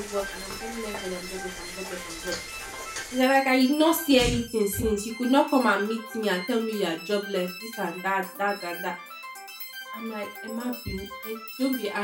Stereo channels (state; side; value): identical; both; correlation 1.00